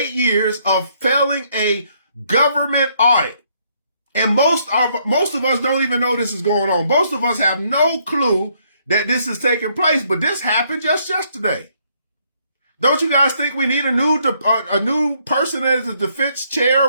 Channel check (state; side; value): inverted; both; correlation -0.70